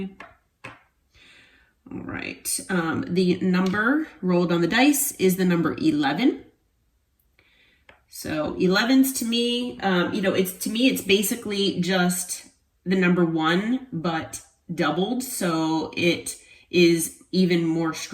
All right. The number rolled on the dice is the number 11. So 11s to me, it's basically just the number 1, but doubled. So it is even more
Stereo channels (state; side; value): identical; both; correlation 1.00